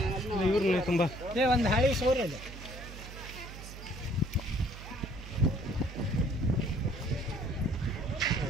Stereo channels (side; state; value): right; noise; hum, 12 dB below the sound